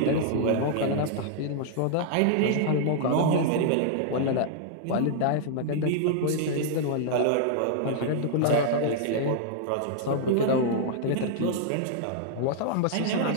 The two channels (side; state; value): both; different; correlation -0.01